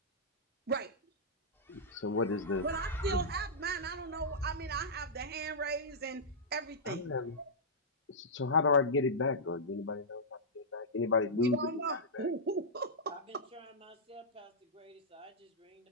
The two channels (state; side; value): normal; both; correlation -0.12